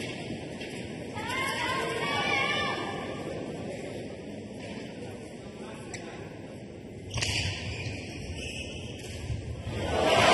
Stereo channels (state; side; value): identical; both; correlation 1.00